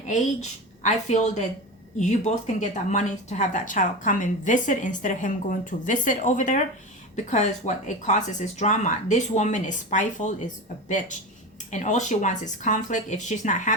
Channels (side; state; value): both; normal; correlation 0.25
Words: age, I feel that you both can get that money to have that child come and visit instead of him going to visit over there, because what it causes is drama. This woman is spiteful, is a bitch, and all she wants is conflict. If she's not